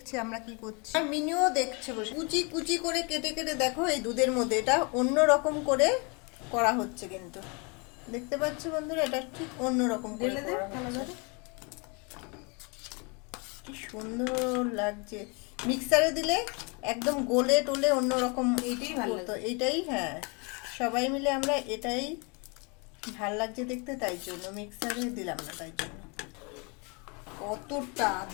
আমরা কি করছি, আর মিনিও দেখছে বসে। কুচি কুচি করে কেটে কেটে দেখো এই দুধের মধ্যে এটা অন্য রকম করে করা হচ্ছে কিন্তু। দেখতে পাচ্ছ বন্ধুরা, এটা ঠিক অন্য রকম করে করা হচ্ছে। কি সুন্দর লাগছে। মিক্সারে দিলে একদম গোলে টোলে অন্যরকম। এইটাই ভালো তো এইটাই, হ্যাঁ, সবাই মিলে আমরা এটাই ভাল লাগছে দেখতে, তাই জন্য মিক্সারে দিলাম না। তাই জন্য কতটা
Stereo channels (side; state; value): right; quieter; 32.1 dB